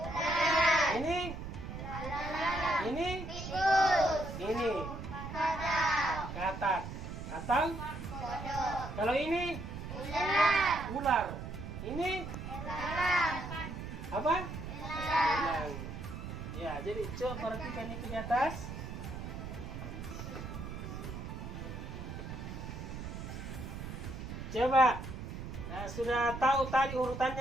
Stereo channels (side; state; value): right; noise; rumble, 8 dB below the sound